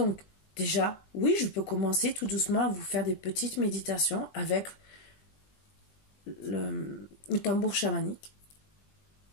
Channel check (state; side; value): late; right; 20 ms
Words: déjà, oui, je peux commencer tout doucement à vous faire des petites méditations avec le tambour chamanique.